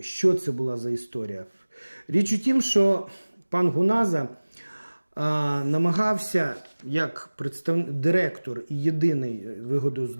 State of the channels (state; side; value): inverted; both; correlation -1.00